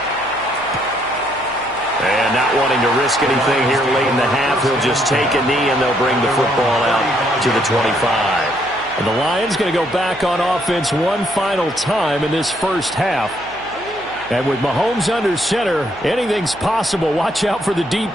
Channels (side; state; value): right; noise; hum, 21 dB below the sound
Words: And not wanting to risk anything here late in the half, he'll just take a knee and they'll bring the football out to the 25. And the Lions going to go back on offense one final time in this first half. And with Mahomes under center, anything's possible. Watch out for the deep